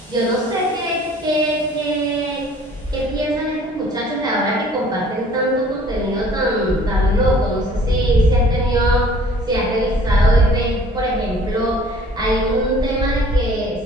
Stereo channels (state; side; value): normal; both; correlation 0.53